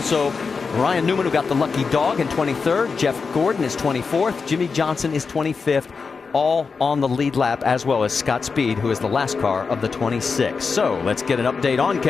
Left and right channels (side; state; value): right; quieter; 5.0 dB